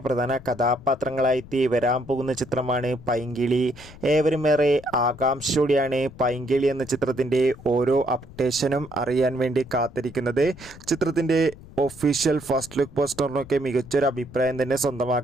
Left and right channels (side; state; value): left; noise; rumble, 19 dB below the sound